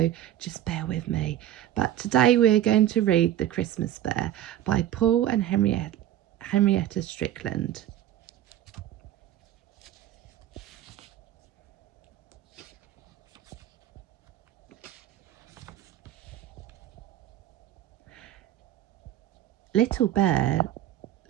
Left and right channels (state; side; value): quieter; left; 12.2 dB